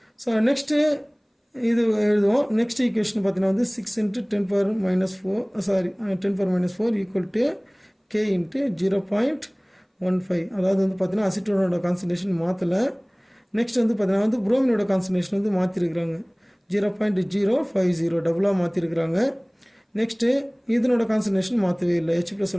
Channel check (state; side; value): identical; both; correlation 1.00